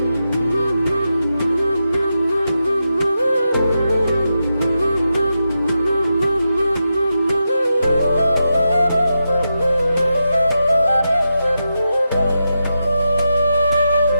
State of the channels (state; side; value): inverted; both; correlation -0.88